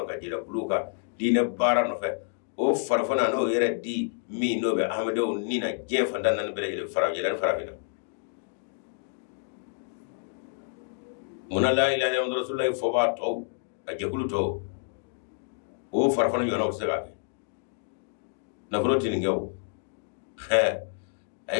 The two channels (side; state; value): right; silent; digital silence